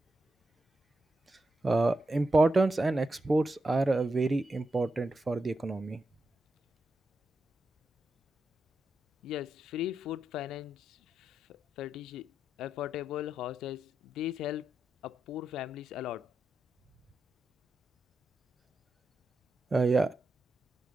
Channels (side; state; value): both; normal; correlation 0.87